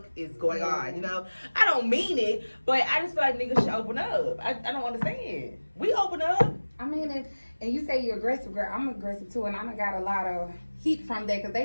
is going on, you know? I don't mean it, but I just feel like niggas should open up. I don't understand. We open up. I mean, and you say you're aggressive, girl. I'm aggressive too, and I done got a lot of heat from that because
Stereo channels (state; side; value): inverted; both; correlation -1.00